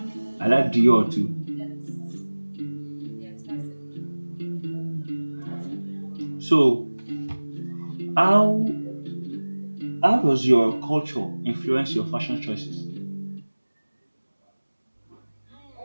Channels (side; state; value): both; inverted; correlation -1.00